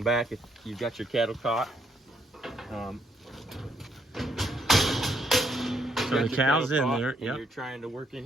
back, if you've got your cattle caught. So the cow's in there. Yep. You're trying to work in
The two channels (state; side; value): normal; both; correlation 0.72